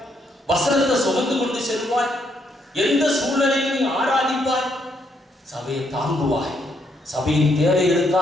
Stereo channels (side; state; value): both; normal; correlation 0.75